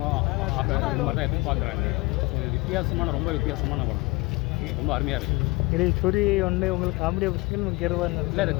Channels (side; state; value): right; quieter; 24.3 dB